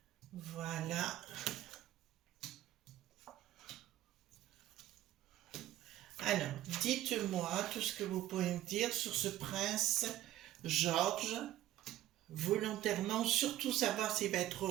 Voilà. Alors, dites-moi tout ce que vous pouvez me dire sur ce prince George, volontairement, surtout savoir s'il va être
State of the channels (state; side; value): quieter; left; 13.9 dB